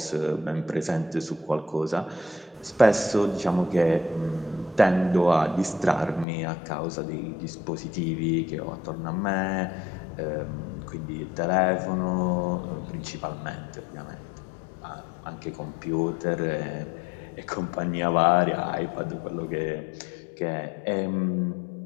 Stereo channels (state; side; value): drops out; right; at 6.2 s